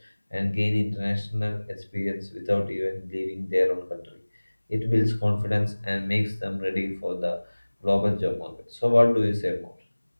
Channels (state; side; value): inverted; both; correlation -1.00